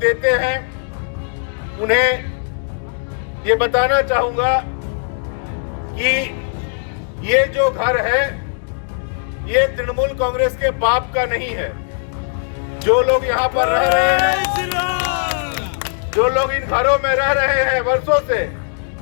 हैं उन्हें ये बताना चाहूंगा कि ये जो घर है ये तृणमूल कांग्रेस के बाप का नहीं है। जो लोग यहाँ पर रह रहे हैं, जो लोग इन घरों में रह रहे हैं वर्षों से,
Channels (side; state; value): right; silent; digital silence